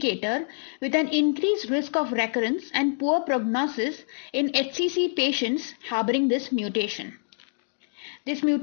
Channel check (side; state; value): right; silent; digital silence